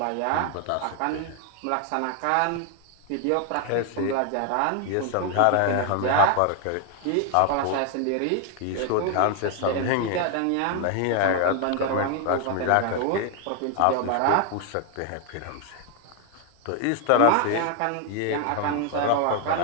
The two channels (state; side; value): different; both; correlation 0.01